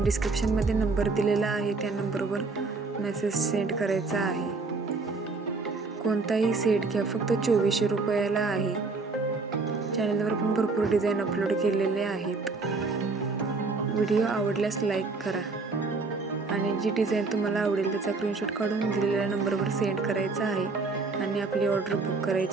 डिस्क्रिप्शनमध्ये नंबर दिलेला आहे, त्या नंबरवर मेसेज सेंड करायचा आहे। कोणताही सेट घ्या, फक्त 2400 रुपयाला आहे। चॅनलवर पण भरपूर डिझाईन अपलोड केलेले आहेत। व्हिडिओ आवडल्यास लाईक करा आणि जी डिझाईन तुम्हाला आवडेल त्याचा स्क्रीनशॉट काढून दिलेल्या नंबरवर सेंड करायचा आहे आणि आपली ऑर्डर बुक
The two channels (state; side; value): quieter; left; 3.9 dB